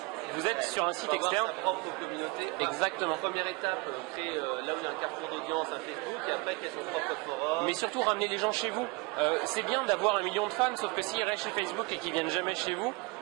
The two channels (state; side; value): quieter; left; 26.0 dB